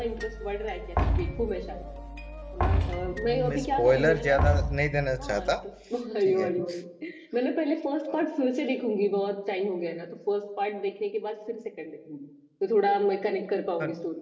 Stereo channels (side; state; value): both; identical; correlation 1.00